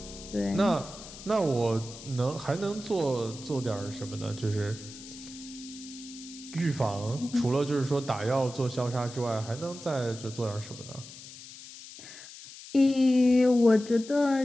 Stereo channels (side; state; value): left; noise; hiss, 15 dB below the sound